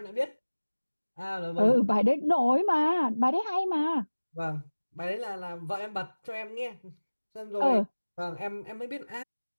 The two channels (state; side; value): inverted; both; correlation -1.00